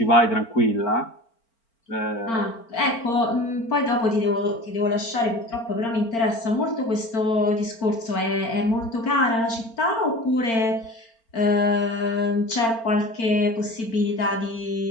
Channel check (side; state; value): right; late; 4.4 ms